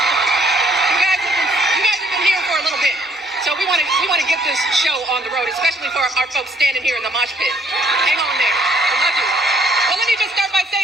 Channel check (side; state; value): both; normal; correlation 0.64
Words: We want to get this show on the road, especially for our folks standing here in the mosh pit. Hang on there. I love you. Well, let me just start by